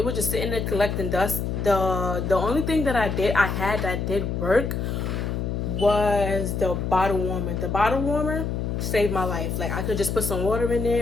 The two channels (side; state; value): left; noise; hum, 2 dB below the sound